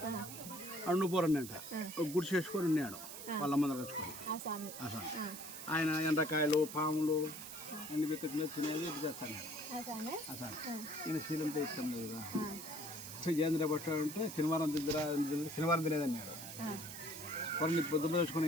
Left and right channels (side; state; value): right; noise; hiss, 10 dB below the sound